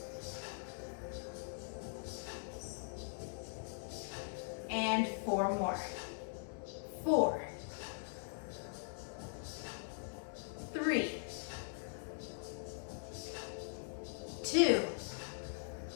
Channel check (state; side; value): silent; right; digital silence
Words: And 4 more. 4, 3, 2,